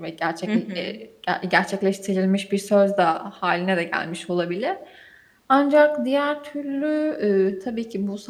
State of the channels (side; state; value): both; identical; correlation 1.00